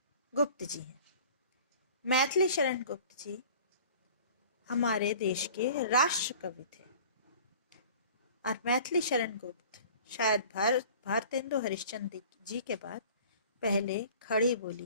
गुप्त जी हैं। मैथिली शरण गुप्त जी हमारे देश के राष्ट्र कवि थे और मैथिली शरण गुप्त शायद भारतेंदु हरिश्चंद्र जी के बाद पहले खड़ी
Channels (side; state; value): both; inverted; correlation -0.45